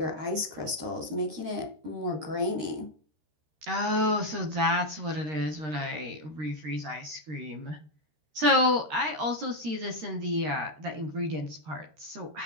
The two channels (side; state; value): left; late; 13 ms